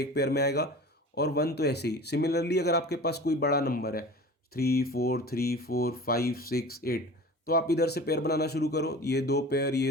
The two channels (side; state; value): both; normal; correlation 0.38